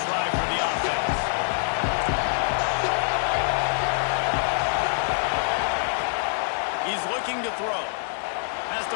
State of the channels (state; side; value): silent; right; digital silence